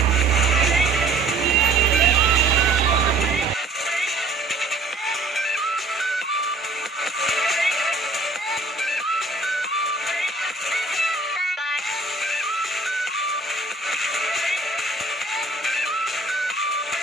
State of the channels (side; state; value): left; quieter; 3.3 dB